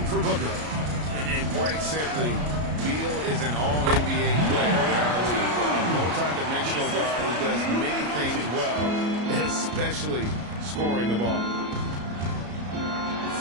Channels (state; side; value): late; left; 33 ms